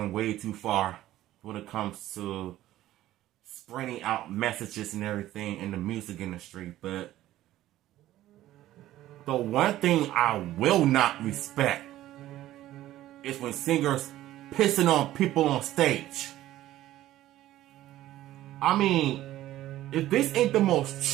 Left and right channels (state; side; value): quieter; left; 14.5 dB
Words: way too far when it comes to spreading out messages and everything in the music industry. But the one thing I will not respect is when singers pissing on people on stage. I mean, if this ain't the